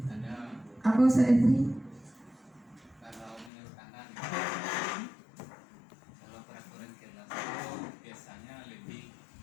Apa Ustaz Efri? Kalau menurut Anda, kalau peraturan kelas itu biasanya lebih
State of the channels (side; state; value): right; drops out; at 3.5 s